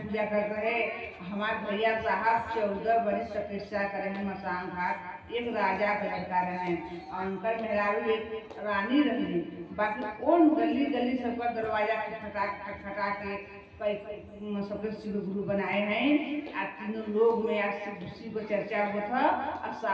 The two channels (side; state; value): both; identical; correlation 1.00